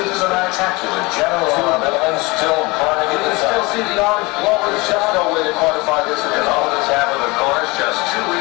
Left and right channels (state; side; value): quieter; right; 24.4 dB